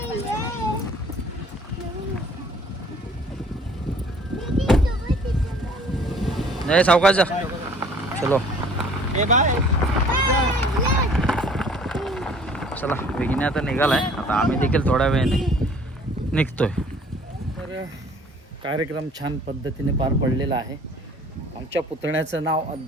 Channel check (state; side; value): normal; both; correlation 0.53